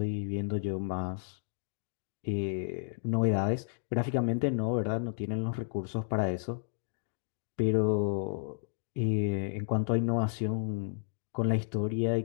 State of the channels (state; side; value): silent; right; digital silence